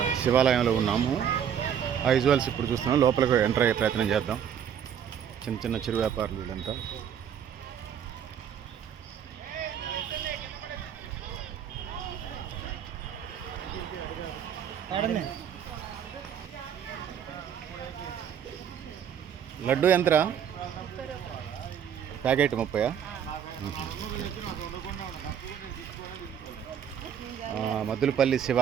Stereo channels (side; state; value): left; quieter; 8.6 dB